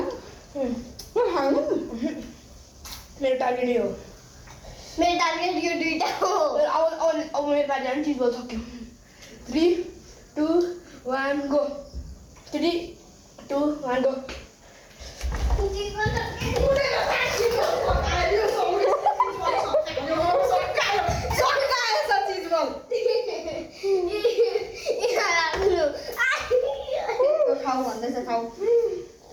मेरो टार्गेट यो मेरो टार्गेट यो दुईटा हो अब मेरो पालि अनि चिज बोल सक्यो 3 2 1 गो 3 2 1 गो खाऊ भन्दैछ खाऊ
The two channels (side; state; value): both; identical; correlation 1.00